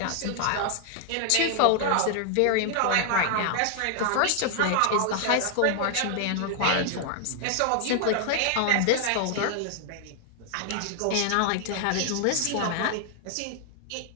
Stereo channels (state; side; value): different; both; correlation 0.00